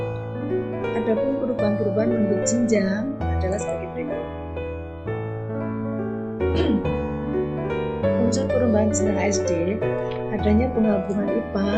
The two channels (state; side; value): identical; both; correlation 1.00